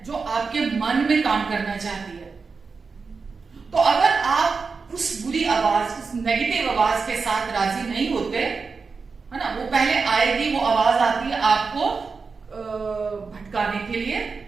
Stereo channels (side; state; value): left; quieter; 4.8 dB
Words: जो आपके मन में काम करना चाहती है। तो अगर आप उस बुरी आवाज, उस नेगेटिव आवाज के साथ राजी नहीं होते, है ना, वो पहले आएगी, वो आवाज आती है आपको भटकाने के लिए,